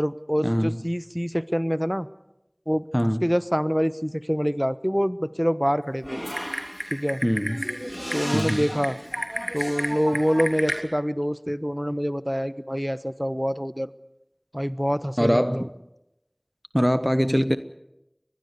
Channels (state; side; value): identical; both; correlation 1.00